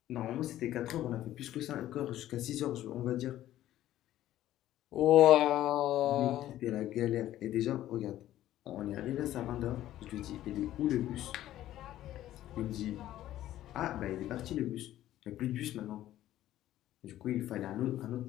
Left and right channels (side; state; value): right; quieter; 13.5 dB